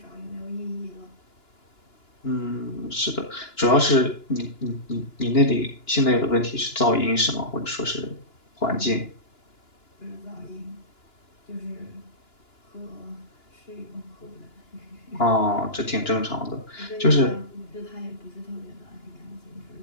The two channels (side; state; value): right; late; 2.9 ms